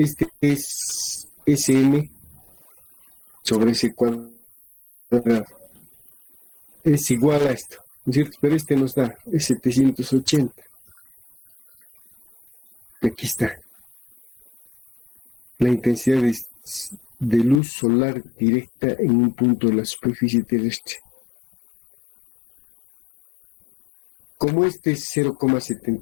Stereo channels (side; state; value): right; drops out; at 17.6 s